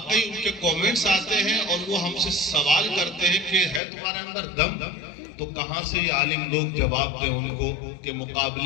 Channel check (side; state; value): right; drops out; at 3.8 s